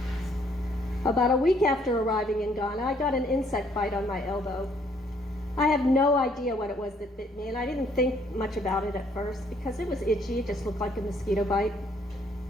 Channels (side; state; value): both; normal; correlation 0.66